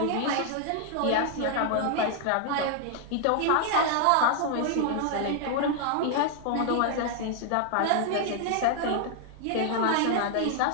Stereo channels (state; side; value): different; both; correlation 0.00